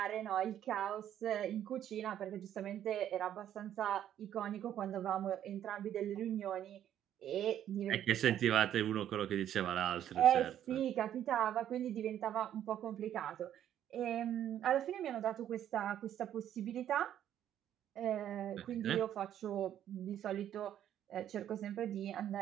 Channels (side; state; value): left; quieter; 10.8 dB